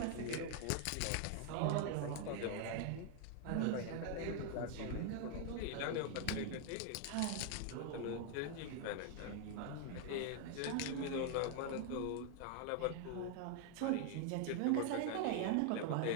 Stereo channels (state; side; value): different; both; correlation 0.00